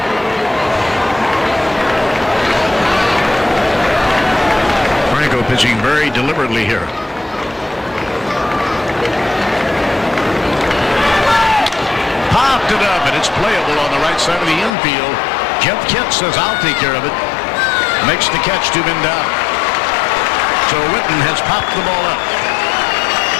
Franco pitching very deliberately here. Popped it up, and it's playable on the right side of the infield. Jeff Kent says, I'll take care of it. Makes the catch, 2 men down. So Whitten has popped the ball up.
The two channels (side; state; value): right; drops out; at 14.7 s